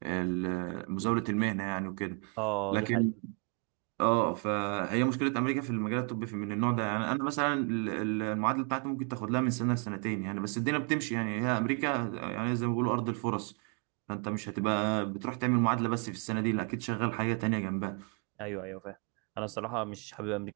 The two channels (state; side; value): quieter; left; 38.0 dB